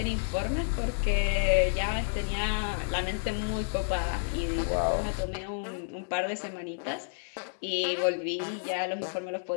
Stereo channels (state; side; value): silent; right; 58 dB below the other